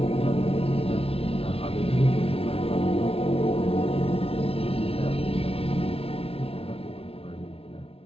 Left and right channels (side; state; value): right; late; 0.27 ms